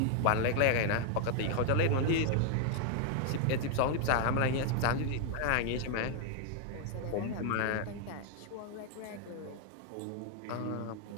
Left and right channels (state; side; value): different; both; correlation 0.00